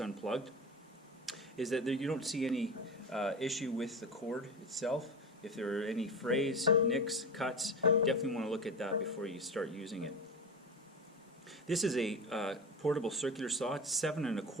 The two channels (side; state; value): both; normal; correlation 0.26